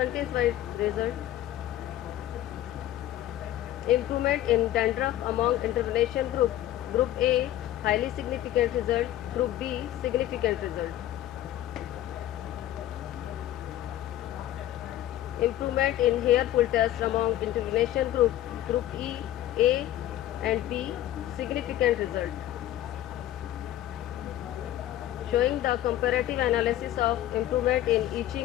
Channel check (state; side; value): quieter; right; 13.3 dB